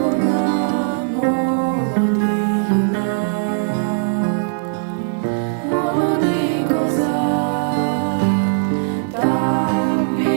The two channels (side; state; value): left; silent; digital silence